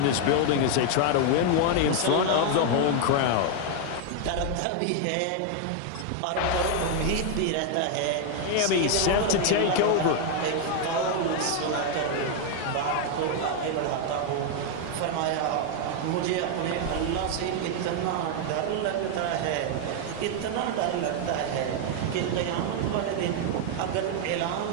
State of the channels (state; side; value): different; both; correlation 0.00